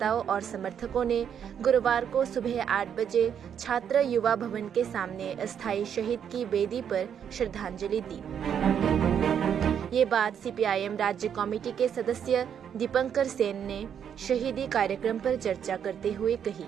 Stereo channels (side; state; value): left; quieter; 8.4 dB